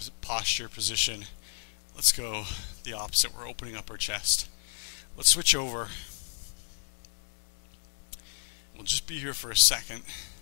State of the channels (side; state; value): right; silent; digital silence